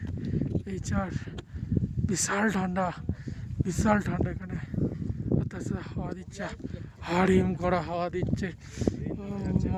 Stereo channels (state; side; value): identical; both; correlation 1.00